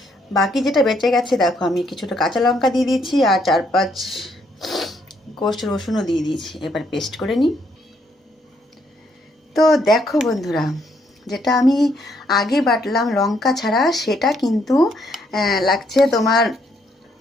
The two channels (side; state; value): both; normal; correlation 0.72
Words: বাকি যেটা বেঁচে গেছে দেখো, আমি কিছুটা কাঁচা লঙ্কা দিয়ে দিয়েছি আর 4-5 কোষ রসুনও দিয়ে দিয়েছি। এবার পেস্ট করে নিই। তো দেখো বন্ধুরা, যেটা আমি আগে বাটলাম লঙ্কা ছাড়া, সেটা কিন্তু লাগছে তোমার